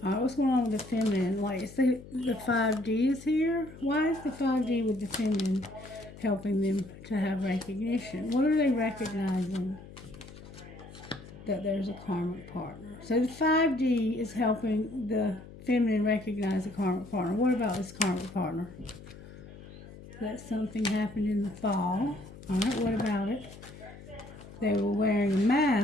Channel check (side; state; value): left; noise; hum, 17 dB below the sound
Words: What's going on with the feminine? Like, it's the 5D is here. Why is the 5D with the feminine helping them to have recognition? What are they recognizing? That there's a karmic partner. So the 5D is helping the feminine recognize a karmic partner. What about this karmic partner? That something happened in the fall. Alright, what about it? They were wearing a